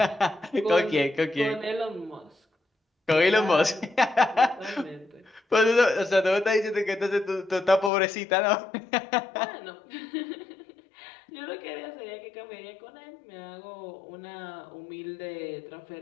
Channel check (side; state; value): right; drops out; at 7.9 s